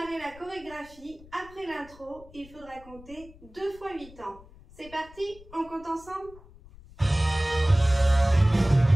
la chorégraphie, après l'intro, il faudra compter 2 fois 8 ans. C'est parti, on compte ensemble?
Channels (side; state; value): left; noise; rumble, 22 dB below the sound